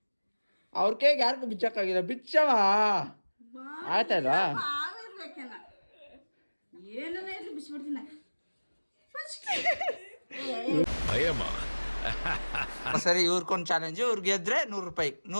ಅವ್ರ ಕೈಗೆ ಯಾರಿಗೂ ಬಿಚ್ಚಕ್ಕಾಗಿಲ್ಲ ಬಿಚ್ಚಮ್ಮ ಆಯ್ತಲ್ವಾ ಸರಿ ಇವ್ರಿಗೊಂದು ಚಾಲೆಂಜ್ ಇವ್ರು ಗೆದ್ರೆ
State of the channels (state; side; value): inverted; both; correlation -1.00